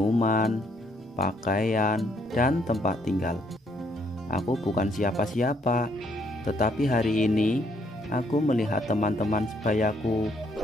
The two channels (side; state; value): both; normal; correlation 0.70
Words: pakaian, dan tempat tinggal. Aku bukan siapa-siapa, tetapi hari ini aku melihat teman-teman sebayaku